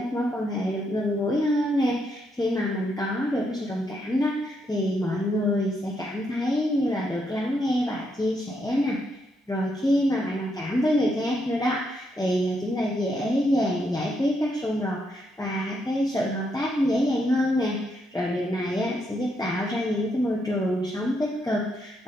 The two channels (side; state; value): both; normal; correlation 0.78